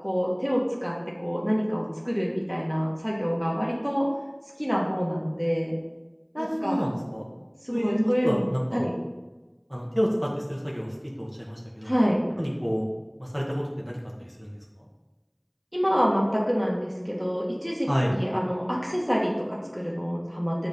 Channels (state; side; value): identical; both; correlation 1.00